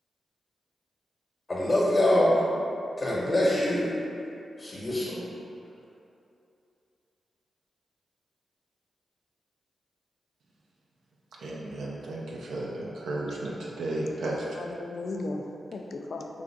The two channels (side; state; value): both; normal; correlation 0.90